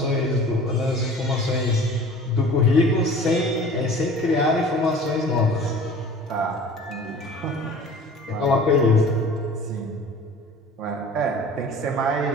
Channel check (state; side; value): normal; both; correlation 0.44